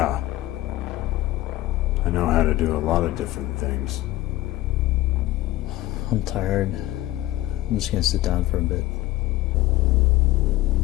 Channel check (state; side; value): quieter; right; 16.4 dB